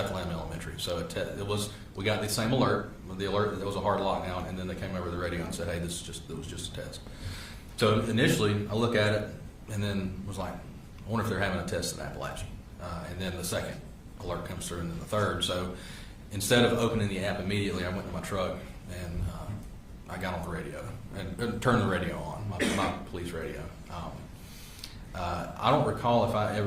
Elementary. So we got the same alert, the alert that there was a hard lockdown, and then they came over the radio and said, "Hey, it was just a test." So initially, I look at it and then was like, "I wonder if they're having a test in Apalachee." And then the second alert comes through, and then the third. So instead of opening the app immediately, I went to my truck and I got on the radio and turned the radio on, my police radio. I don't recall if I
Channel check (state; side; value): identical; both; correlation 1.00